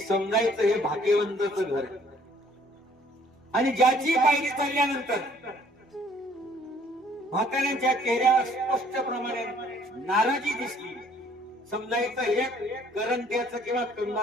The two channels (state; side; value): normal; both; correlation 0.59